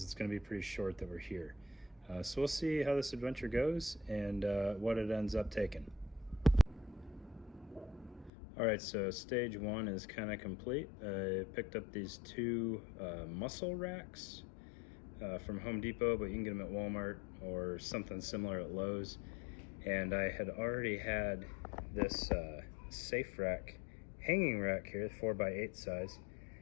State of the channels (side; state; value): right; drops out; at 8.3 s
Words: it's going to be pretty short that we're here. So we'll see how this adventure goes and what it ends up taking. All right, so stage one is kind of complete. I picked up these two muscle racks from Home Depot, but you can get them at Walmart or something similar at Lowe's. And I had already had this safe rack, hanging rack here, 4x8 size.